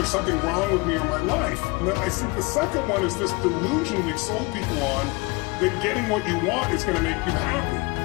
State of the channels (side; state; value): right; quieter; 26.4 dB